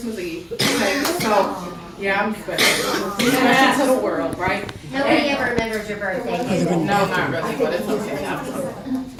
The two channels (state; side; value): identical; both; correlation 1.00